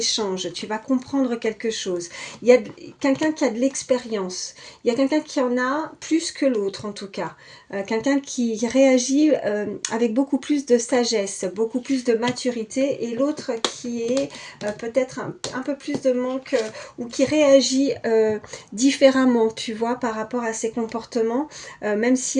Tu vas comprendre quelque chose. Il y a quelqu'un qui a de l'expérience, il y a quelqu'un qui en a plus que l'autre en tout cas. Quelqu'un qui réagit avec beaucoup plus de sagesse, beaucoup plus de maturité, et l'autre qui est peut-être un peu plus de manque ou qui réagit différemment, tu vois, par rapport à ses comportements, même si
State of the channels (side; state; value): both; identical; correlation 1.00